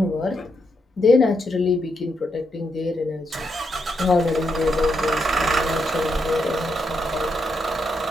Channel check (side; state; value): both; normal; correlation 0.81